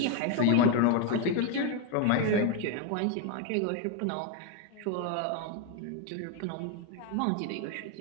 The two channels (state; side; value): different; both; correlation 0.01